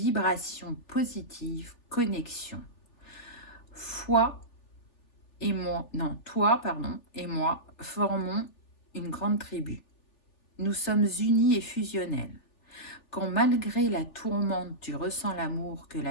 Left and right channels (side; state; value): right; late; 3.4 ms